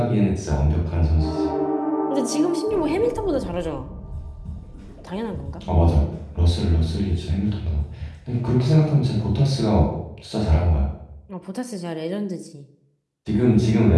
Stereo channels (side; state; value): both; identical; correlation 1.00